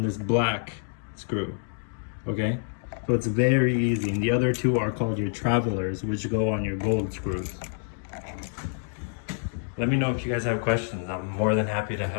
this black screw, okay? So it's very easy, and the other 2 are called your travelers, which go on your gold screws. Let me know if you guys have questions. I'm more than happy to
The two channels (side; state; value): right; silent; digital silence